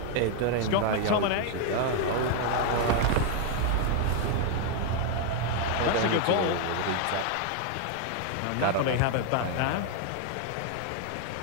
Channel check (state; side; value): different; both; correlation 0.00